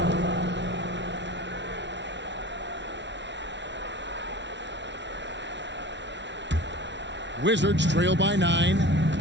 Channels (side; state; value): left; late; 0.52 ms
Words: Wizards trail by 9.